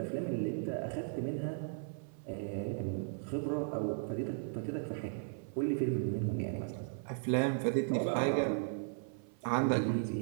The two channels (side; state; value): left; silent; 54 dB below the other